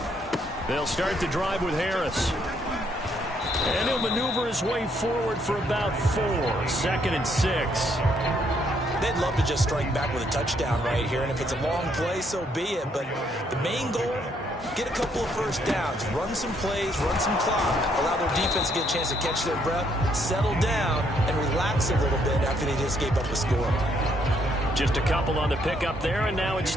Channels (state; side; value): normal; both; correlation 0.71